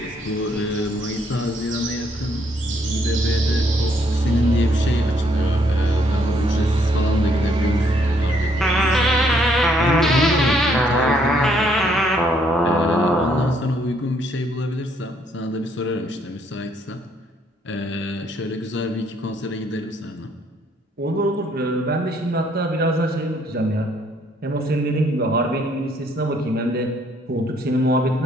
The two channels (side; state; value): both; normal; correlation 0.68